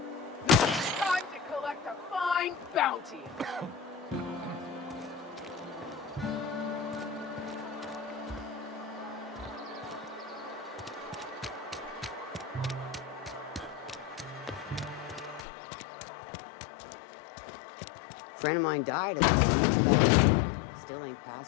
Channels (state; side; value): drops out; right; at 15.4 s